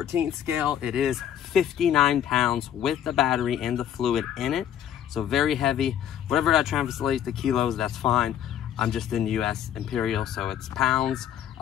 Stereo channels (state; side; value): quieter; right; 10.2 dB